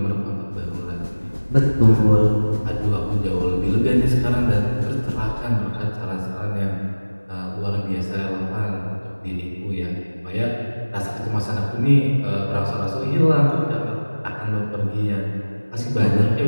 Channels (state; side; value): inverted; both; correlation -1.00